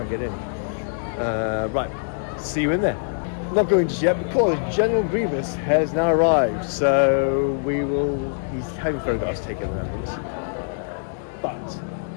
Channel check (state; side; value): silent; right; digital silence